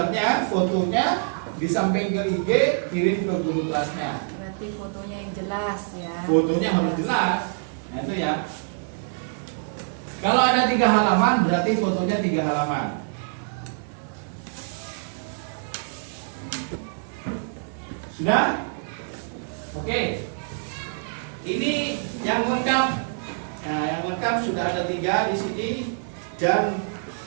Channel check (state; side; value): silent; left; 61 dB below the other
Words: fotonya disamping ke IG, kirim ke guru kelasnya. Berarti fotonya yang jelas ya. Fotonya harus jelas. Nah itu ya. Kalau ada 3 halaman, berarti fotonya 3 halaman. Sudah? Oke. Ini yang lengkap. Nah, yang lengkap sudah ada 3 di sini dan